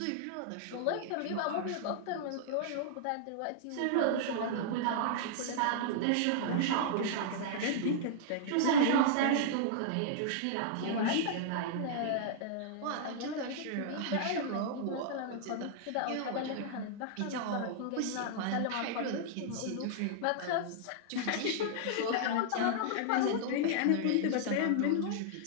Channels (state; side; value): different; both; correlation -0.01